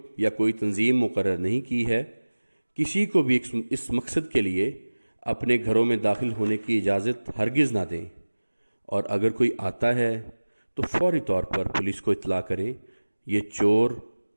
या कोई तंजीम मुकर्रर नहीं की है। किसी को भी इस मकसद के लिए अपने घरों में दाखिल होने की इजाज़त हरगिज़ ना दें, और अगर कोई आता है तो फौरी तौर पर पुलिस को इत्तला करें। ये चोर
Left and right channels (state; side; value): inverted; both; correlation -1.00